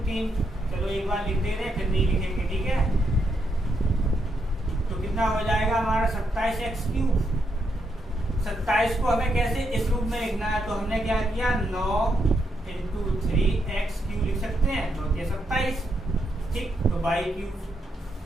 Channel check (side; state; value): both; normal; correlation 0.80